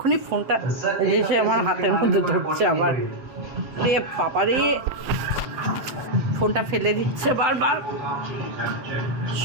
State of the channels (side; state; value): left; late; 7.8 ms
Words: ফোনটা এসে আমার হাতের মধ্যে ধরছে আবার। রে বাবা রে, ফোনটা ফেলে দিচ্ছে বারবার।